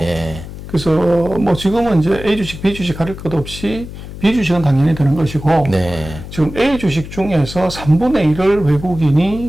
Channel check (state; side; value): noise; left; hum, 12 dB below the sound